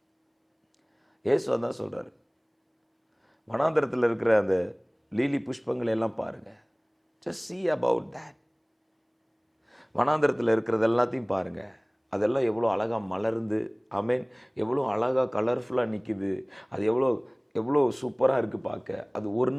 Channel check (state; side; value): identical; both; correlation 1.00